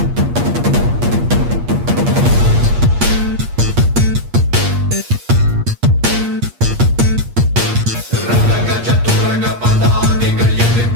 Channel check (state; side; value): late; left; 8.5 ms